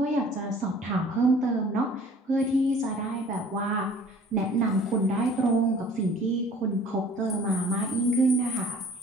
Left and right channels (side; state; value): both; normal; correlation 0.50